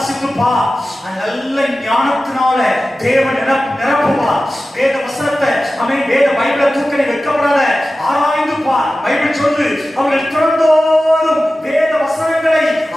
நல்ல ஞானத்தினால தேவன் நிரப்புவா. வேத வசனத்தை வேத பைபிளை தூக்க நீ வைக்கப்படாத, ஆராய்ந்து பார். பைபிள் சொல்லு, அவர்கள் திறந்தோறும் வேத வசனங்களை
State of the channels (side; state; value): both; normal; correlation 0.95